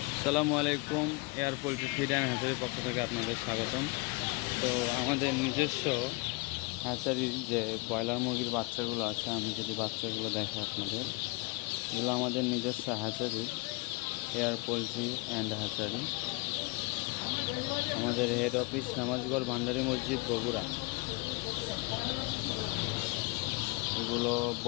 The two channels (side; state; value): right; quieter; 26.3 dB